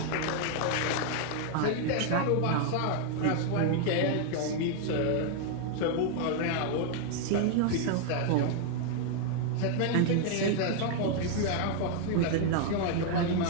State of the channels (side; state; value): both; different; correlation 0.00